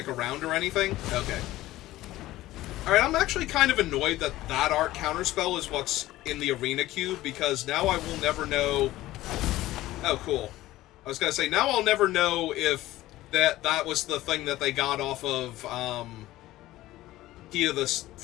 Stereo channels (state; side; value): quieter; right; 16.3 dB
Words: around or anything. Okay. Alright, I'm actually kind of annoyed that that art counterspell is what's in the arena cube, because now I will never know... Oh, cool. I was gonna say, now I'll never know if that was the thing that they got off of, Key to this